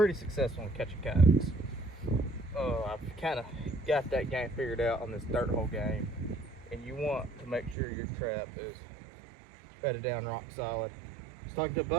successful in catching coyotes. I've kind of got that game figured out on this dirt hole game, and you want to make sure your trap is bedded down rock solid. I was talking to a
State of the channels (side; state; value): left; drops out; at 7.8 s